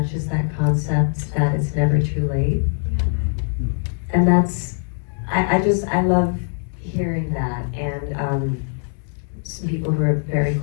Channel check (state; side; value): silent; right; 55 dB below the other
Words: is that concept that it's never too late. And that's, I love hearing that. And some people who are very